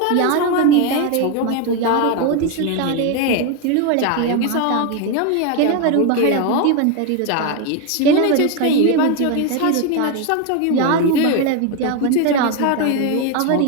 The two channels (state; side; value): different; both; correlation 0.02